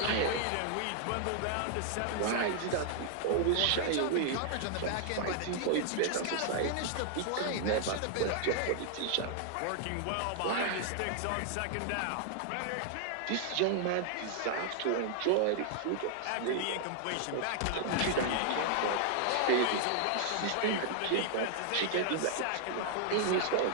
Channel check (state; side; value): different; both; correlation 0.00